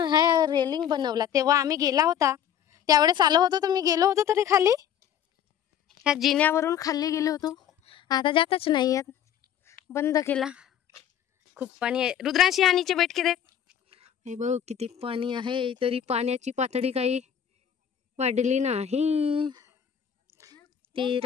रेलिंग बनवला तेव्हा आम्ही गेला होता. त्यावेळेस आलो होतो तर मी गेलो होतो तरी खाली ह्या जिन्यावरून खाली गेलो होतो. आता जातच नाही आहेत. बंद केला. खूप पाणी आहे. रुद्रांशी हा नीचे बैठ के देख. हे बघ किती पाणी आहे. तरी पाण्याची पातळी काही वाढली नाही.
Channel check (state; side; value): quieter; right; 9.4 dB